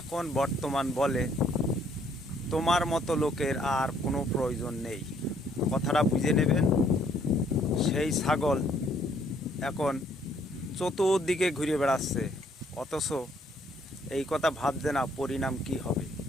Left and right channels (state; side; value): normal; both; correlation 0.65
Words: বর্তমান বলে তোমার মতো লোকের আর কোনো প্রয়োজন নেই। কথাটা বুঝে নেবেন। সেই ছাগল এখন চতুর্দিকে ঘুরে বেড়াচ্ছে, অথচ এই কথা ভাবছে না পরিণাম কি হবে।